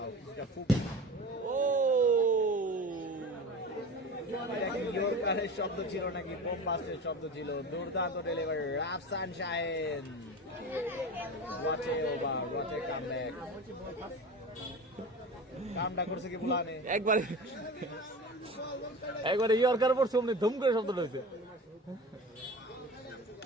এটা খুব ও ইয়র্কারের শব্দ ছিল নাকি বোমবাস্টের শব্দ ছিল? দুর্দান্ত ডেলিভারি রাফসান শাহিন। ওয়াচে ওভার, ওয়াচে কামব্যাক। কামটা করছে কি বুলানে? একবারে ইয়র্কার পড়ছে অমনি ধুম করে শব্দ হয়েছে।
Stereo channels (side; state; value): both; normal; correlation 0.33